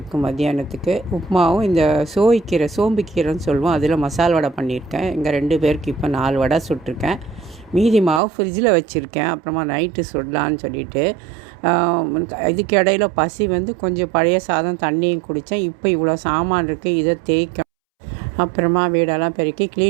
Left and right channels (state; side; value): drops out; left; at 8.2 s